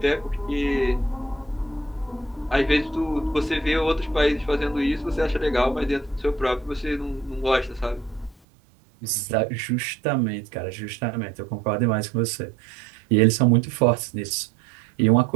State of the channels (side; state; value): left; drops out; at 8.3 s